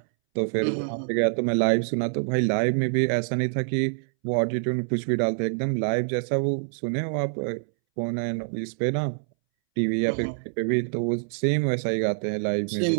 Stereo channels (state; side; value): silent; left; 61 dB below the other